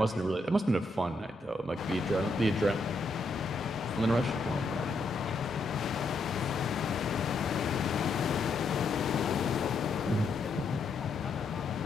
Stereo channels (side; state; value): right; quieter; 3.1 dB